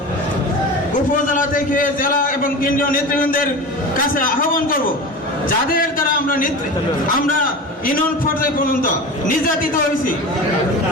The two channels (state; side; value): normal; both; correlation 0.31